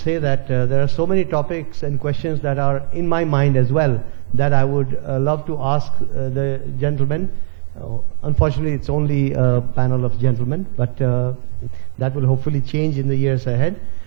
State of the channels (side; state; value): left; silent; digital silence